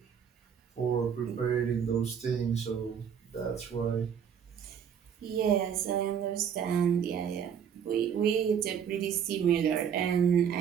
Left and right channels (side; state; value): left; quieter; 7.9 dB